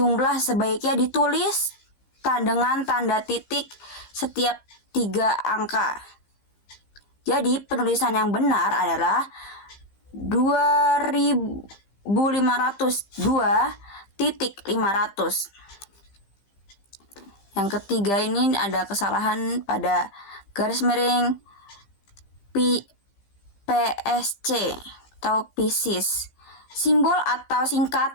sebaiknya ditulis dengan tanda titik setiap 3 angka. Jadi penulisan yang benar adalah 2.502.500. Yang ketiga ini ada kesalahan pada garis miring PSC atau Pisces. Simbol atau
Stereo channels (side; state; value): right; late; 15 ms